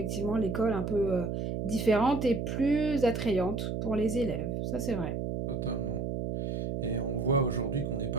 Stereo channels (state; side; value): noise; right; hum, 2 dB below the sound